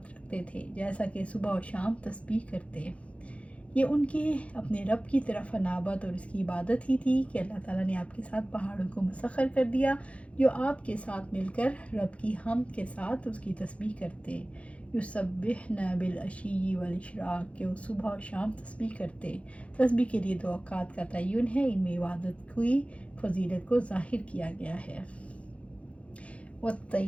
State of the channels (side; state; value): right; late; 0.063 ms